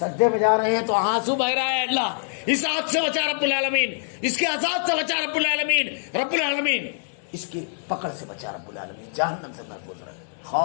میں جا رہے ہیں تو آنسو بہ رہا ہے، اللہ اس آگ سے بچا رب العالمین، اس کے عذاب سے بچا رب العالمین، رب العالمین اس کی پکڑ سے بچا رب العالمین، جہنم سے محفوظ رہے،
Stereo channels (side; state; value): right; silent; digital silence